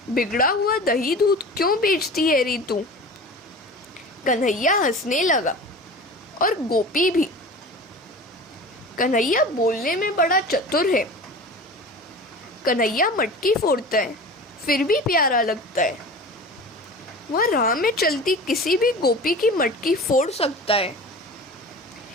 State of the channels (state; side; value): normal; both; correlation 0.36